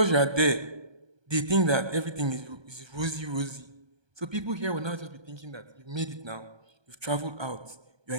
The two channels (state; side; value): late; left; 1.2 ms